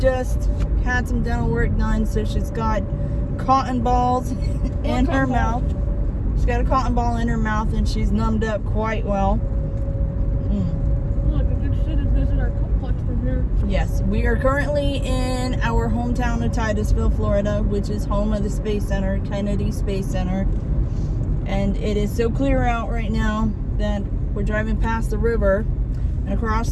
had some dental work done, so she's got cotton balls in her mouth. She's got a cotton ball in her mouth and she's numbed up quite well. Look, I can see the visitor complex from here. Yes, we are currently in our hometown of Titusville, Florida, which is home of the Space Center, Kennedy Space Center. And it is so clear out right now that we're driving past the river, and across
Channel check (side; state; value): both; identical; correlation 1.00